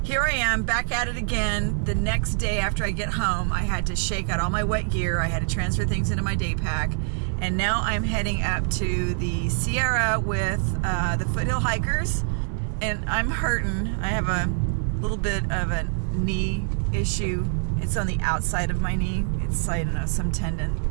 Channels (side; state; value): left; silent; 59 dB below the other